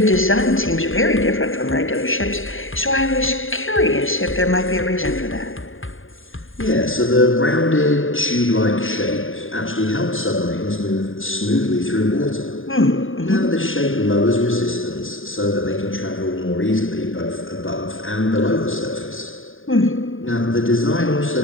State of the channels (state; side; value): late; right; 0.59 ms